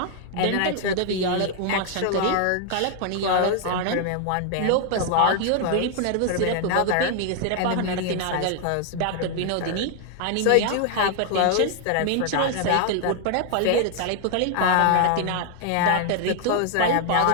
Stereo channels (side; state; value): both; different; correlation 0.00